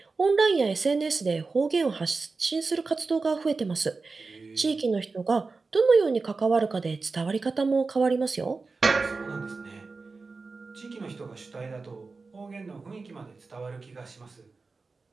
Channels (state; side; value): quieter; left; 4.1 dB